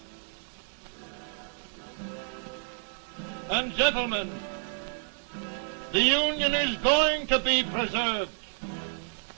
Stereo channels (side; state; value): left; silent; digital silence